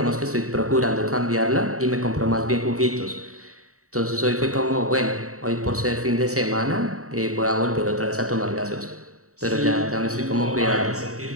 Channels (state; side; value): late; left; 0.65 ms